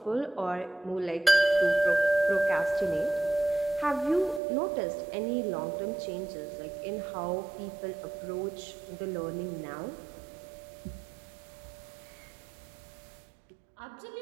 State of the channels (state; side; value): drops out; left; at 4.4 s